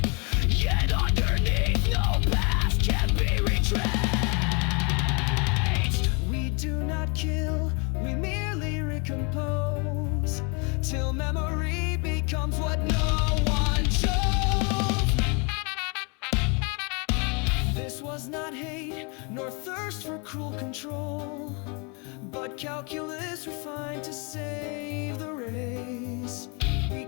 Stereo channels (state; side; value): quieter; right; 33.2 dB